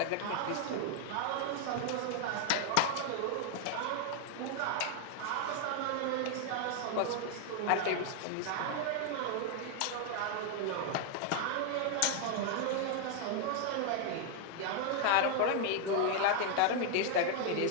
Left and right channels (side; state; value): both; different; correlation 0.00